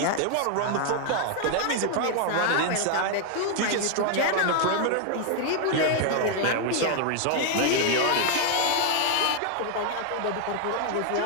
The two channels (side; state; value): both; different; correlation 0.00